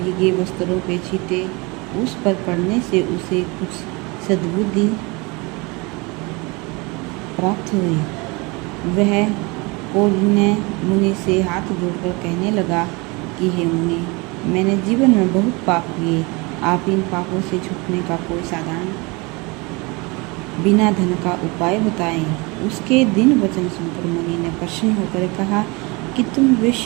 वस्त्रों के छींटे उस पर पड़ने से उसे कुछ सद्बुद्धि प्राप्त हुई। वह कौंडिन्य मुनि से हाथ जोड़कर कहने लगा कि हे मुनि, मैंने जीवन में बहुत पाप किए। आप इन पापों से छूटने का कोई साधारण बिना धन का उपाय बताएं। उसके दिन वचन सुनकर मुनि ने प्रसन्न होकर कहा कि तुम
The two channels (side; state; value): left; quieter; 26.8 dB